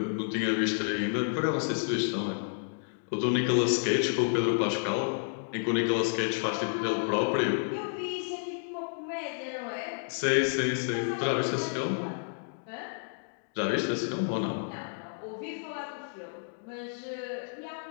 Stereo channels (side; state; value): right; silent; digital silence